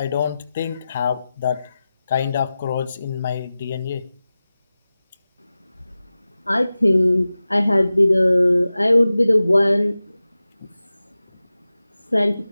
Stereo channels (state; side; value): inverted; both; correlation -0.95